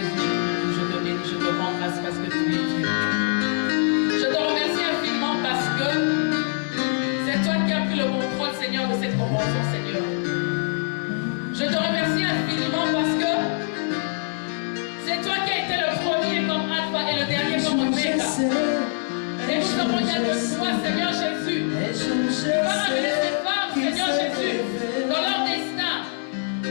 je te bénis, je te rends grâce parce que tu es Dieu. Je te remercie infiniment parce que c'est toi qui as pris le contrôle, Seigneur, de cette convention, Seigneur. Je te remercie infiniment parce que c'est toi qui as été le premier comme Alpha et le dernier comme Oméga. Et nous avons besoin de toi, Seigneur Jésus. Tu vas amener ces femmes, Seigneur Jésus, dans leur destin.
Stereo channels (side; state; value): right; silent; 63 dB below the other